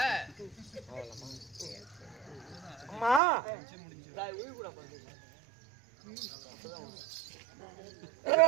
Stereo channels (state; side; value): drops out; left; at 3.2 s